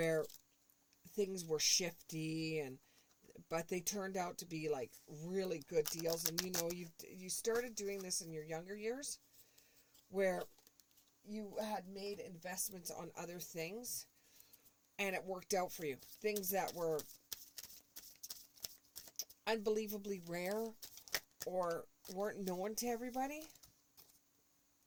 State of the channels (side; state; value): both; identical; correlation 1.00